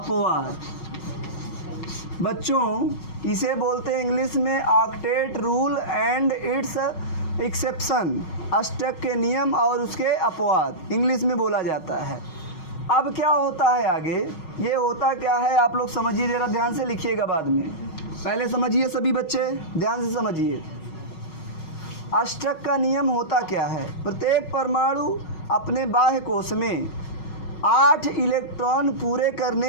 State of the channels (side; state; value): right; late; 6.3 ms